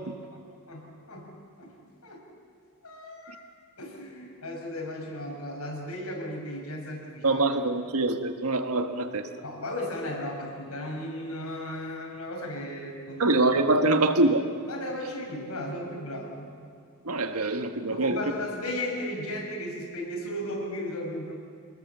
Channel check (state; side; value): normal; both; correlation -0.10